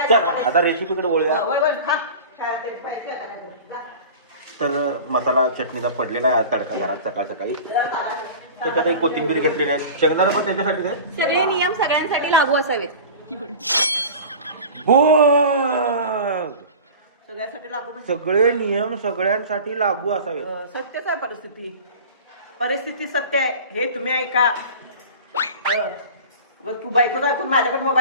चल सांगते? आता रेसिपीकडे वळूया. वय वय खा. काय ते पाहिजे का काय? जा. तर मसाला चटणीचा पडलेला आहे तडका घरात सकाळ सकाळी. त्याच्यात एक कोथिंबीर घेतलेली आहे. शेंगदाणा पण त्याच्यासाठी आहे. सगळे नियम सगळ्यांसाठी लागू असावेत. बोल. सगळ्यासाठी लागू म्हणजे सगळे नियम सगळ्यांसाठी लागू असावे. सत्यच आहे परिस्थिती. परिस्थिती सत्य आहे हे तुम्ही ऐका. मग तू बायकोच ऐकून माझ्याकडे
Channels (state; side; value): inverted; both; correlation -0.36